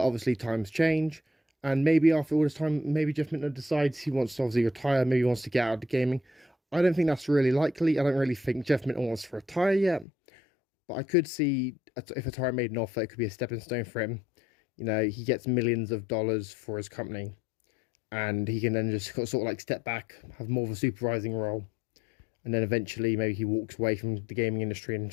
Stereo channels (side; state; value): right; drops out; at 10.1 s